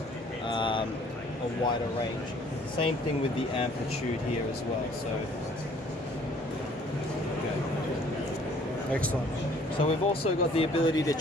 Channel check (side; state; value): both; normal; correlation 0.57